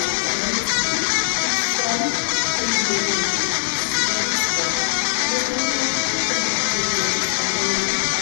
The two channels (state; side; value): silent; right; digital silence